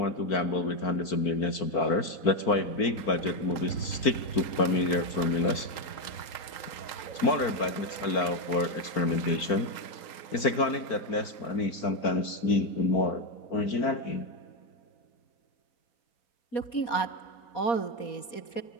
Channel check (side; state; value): right; late; 4.5 ms